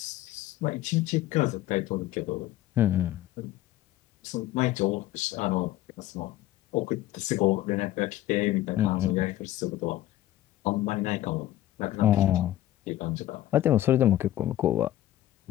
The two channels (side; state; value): right; quieter; 14.3 dB